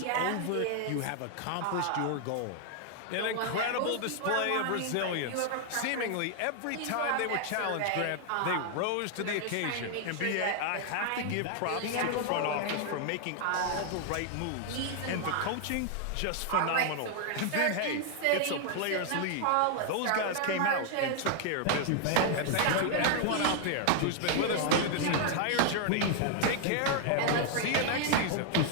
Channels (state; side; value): different; both; correlation 0.00